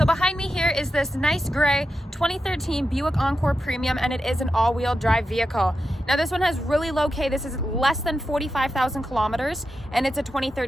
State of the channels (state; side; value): normal; both; correlation 0.89